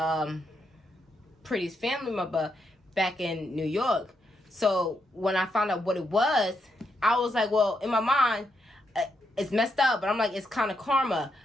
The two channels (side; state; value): both; normal; correlation 0.81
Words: Pretty's family member back in New York. So when I found out what it was, I was like, well, in my mind, it's messed up, but I'm like, it's kind of karma.